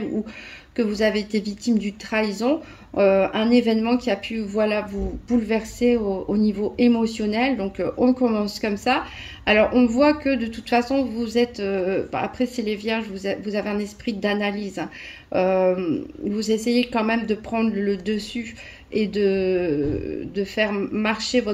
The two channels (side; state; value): both; identical; correlation 1.00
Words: ou que vous avez été victime d'une trahison, un événement qui a pu vous bouleverser au niveau émotionnel. Donc on commence comme ça. Alors on voit que de toute façon vous êtes, après c'est les vierges, vous avez un esprit d'analyse. Vous essayez quand même de prendre le dessus et de faire marcher